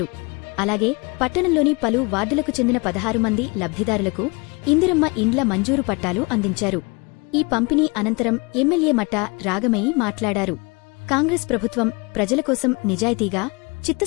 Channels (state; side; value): quieter; right; 28.4 dB